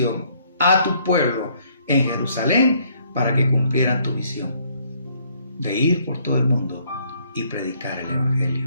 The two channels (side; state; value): both; inverted; correlation -0.65